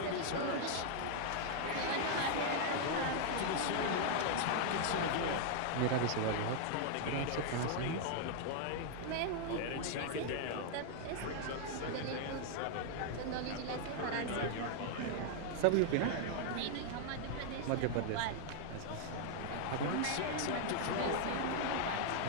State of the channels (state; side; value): different; both; correlation 0.00